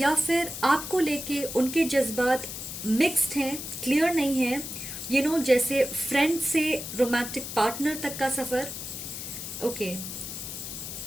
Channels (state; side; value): noise; left; hiss, 8 dB below the sound